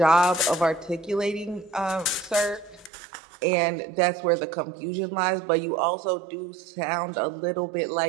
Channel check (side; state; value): left; drops out; at 2.9 s